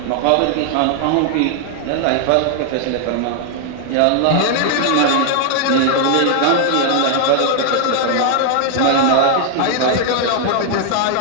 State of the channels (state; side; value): different; both; correlation 0.00